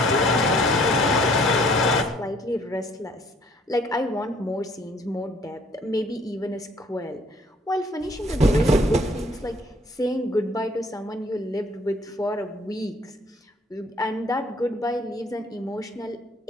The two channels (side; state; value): both; normal; correlation 0.60